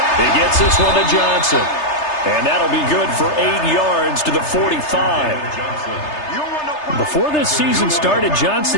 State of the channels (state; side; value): late; right; 3.3 ms